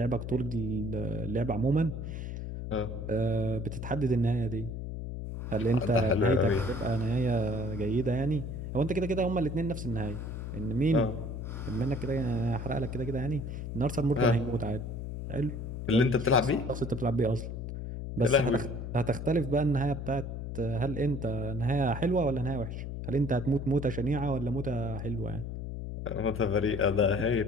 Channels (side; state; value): left; noise; hum, 6 dB below the sound